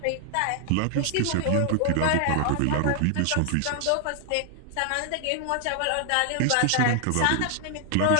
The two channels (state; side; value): different; both; correlation 0.00